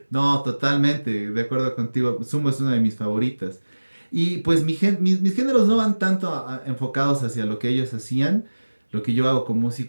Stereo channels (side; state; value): both; inverted; correlation -1.00